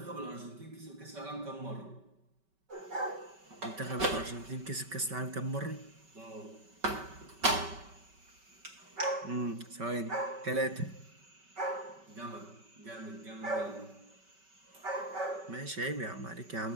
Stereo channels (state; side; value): late; left; 5.2 ms